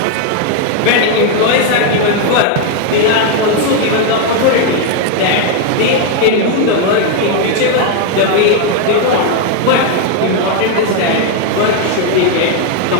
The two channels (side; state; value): both; different; correlation 0.01